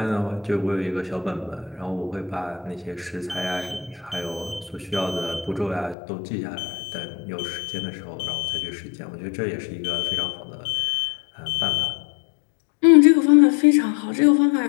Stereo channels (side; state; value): right; drops out; at 6.0 s